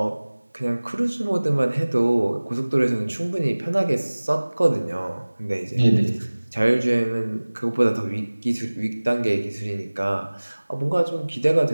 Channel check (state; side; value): inverted; both; correlation -1.00